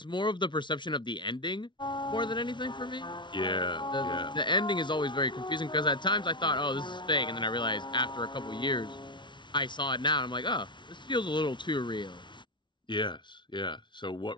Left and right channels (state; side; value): late; right; 0.23 ms